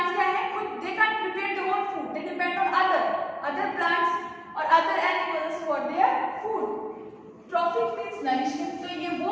क्या है? खुद they can't prepare their own food. They depend on other plants और other animals for their food. Trophic means nourishment. तो ये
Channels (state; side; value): identical; both; correlation 1.00